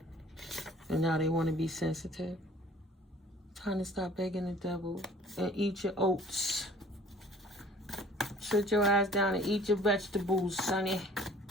And now they want to be sensitive. Time to stop begging the devil and eat your oats. Sit your ass down and eat your vegetables, sonny.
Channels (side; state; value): both; normal; correlation 0.51